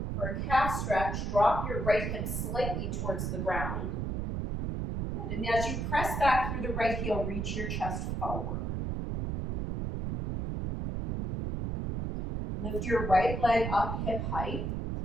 for a calf stretch. Drop your right hip slightly towards the ground. Good. And as you press back through the right heel, reach your chest forward. Lift your right leg up hip height.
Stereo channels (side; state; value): right; noise; rumble, 2 dB below the sound